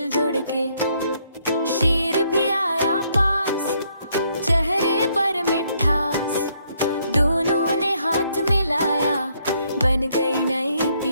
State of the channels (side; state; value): both; inverted; correlation -0.71